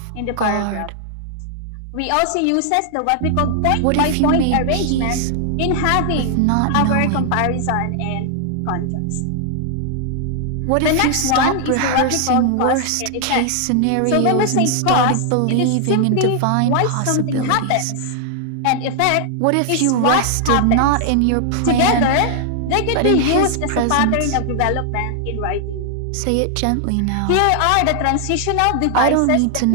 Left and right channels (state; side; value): different; both; correlation 0.00